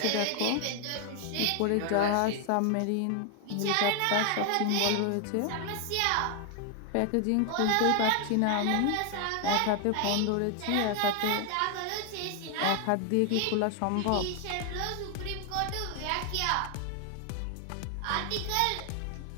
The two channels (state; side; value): different; both; correlation 0.00